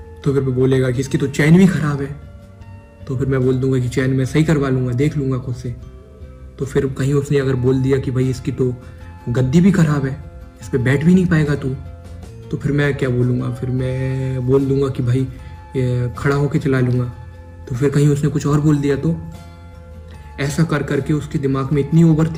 तो फिर मैं बोलेगा कि इसकी तो चैन भी ख़राब है। तो फिर मैं बोल दूंगा कि चैन मैं सही करवा लूँगा, देख लूँगा खुद से। तो फिर कहीं उसने अगर बोल दिया कि भाई इसकी तो गद्दी भी ख़राब है, इस पर बैठ भी नहीं पाएगा तू, तो फिर मैं क्या बोलूँगा, फिर मैं बोल दूंगा कि भाई खड़ा होके चला लूँगा। तो फिर कहीं उसने कुछ और बोल दिया, तो ऐसा कर करके उसके दिमाग में इतनी ओवर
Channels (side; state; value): both; identical; correlation 1.00